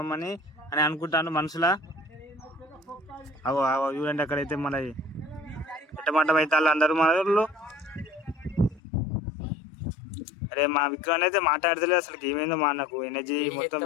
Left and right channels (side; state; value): right; drops out; at 8.8 s